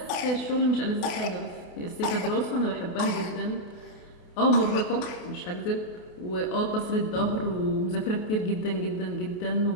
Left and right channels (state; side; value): late; right; 28 ms